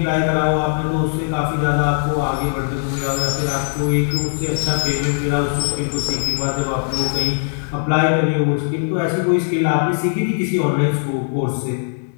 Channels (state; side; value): silent; right; 60 dB below the other